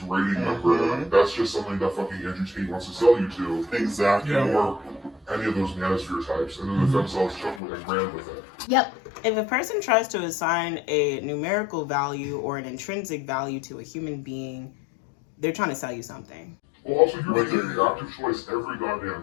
rating number. That's just something that fucking Andrew Tate wants to sell you to. Exactly. Or any of those manosphere types. And then the themselves took with and ran with it. Yep. If a person tries to assign a numerical value or an intrinsic value to a human being, they're trying to sell you something. Well, also, you're making the active choice every goddamn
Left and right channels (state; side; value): drops out; right; at 7.6 s